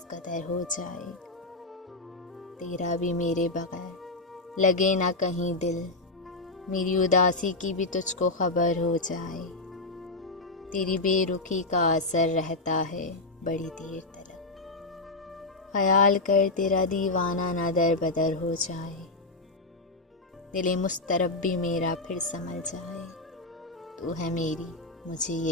قدر ہو جائے، تیرا بھی میرے بغیر لگے نہ کہیں دل، میری اداسی کی بھی تجھ کو خبر ہو جائے، تیری بے رخی کا اثر رہتا ہے بڑی دیر تلک، خیال کر تیرا دیوانہ نہ در بدر ہو جائے، دل مضطرب بھی میرا پھر سنبھل جائے، تو ہے میری مجھے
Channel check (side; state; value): right; quieter; 3.1 dB